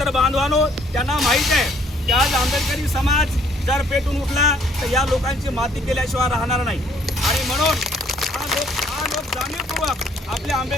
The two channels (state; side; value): normal; both; correlation 0.63